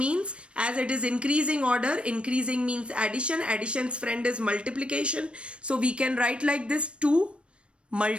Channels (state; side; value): late; left; 0.059 ms